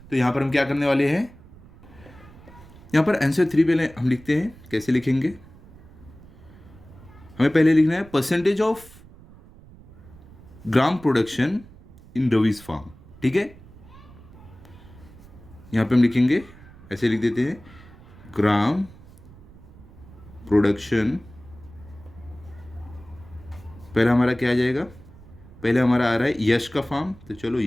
तो यहाँ पर हम क्या करने वाले हैं, यहाँ पर आंसर 3 पहले हम लिखते हैं, कैसे लिखेंगे, हमें पहले लिखना है percentage of gram production in रविज फार्म, ठीक है। यहाँ पे हम लिखेंगे, ऐसे लिख देते हैं, ग्राम प्रोडक्शन, पहला हमारा क्या आ जाएगा, पहले हमारा आ रहा है यश का फार्म, तो चलो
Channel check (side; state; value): right; noise; rumble, 21 dB below the sound